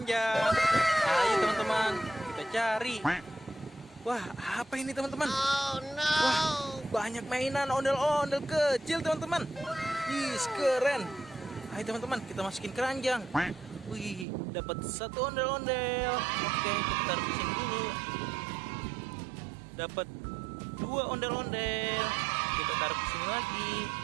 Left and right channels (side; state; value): left; drops out; at 14.2 s